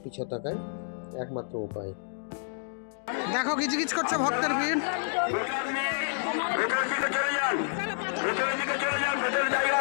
পিছিয়ে থাকার একমাত্র উপায়। দেখো গিজগিজ করছে ভক্তের ভিড়।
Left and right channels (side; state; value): right; silent; digital silence